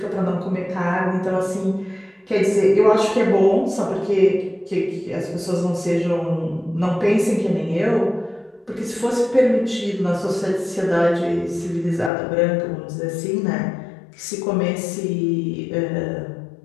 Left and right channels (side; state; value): right; drops out; at 12.1 s